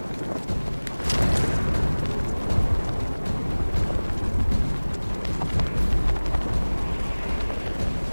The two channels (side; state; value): both; inverted; correlation -1.00